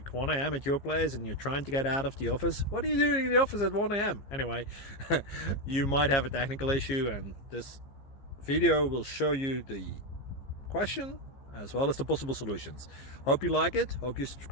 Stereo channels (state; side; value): late; right; 15 ms